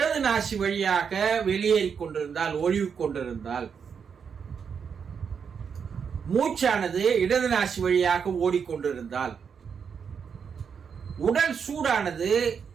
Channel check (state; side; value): quieter; left; 6.7 dB